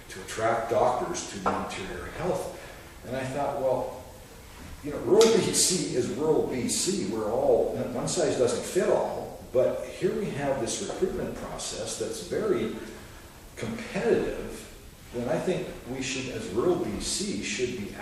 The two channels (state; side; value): identical; both; correlation 1.00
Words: to attract doctors to the Interior Health. And I thought, well, you know, rural BC is rural BC. We're all, one size doesn't fit all, but here we have this recruitment process that's very competitive. Then I think we should, as rural BC, should be